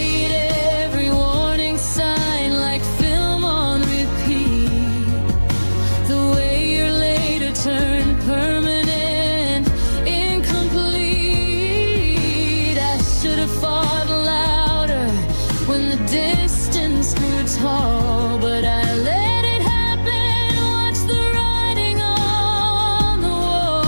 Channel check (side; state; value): both; inverted; correlation -1.00